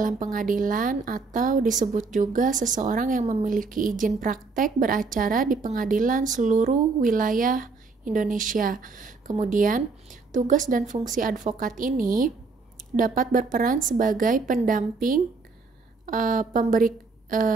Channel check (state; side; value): quieter; left; 4.2 dB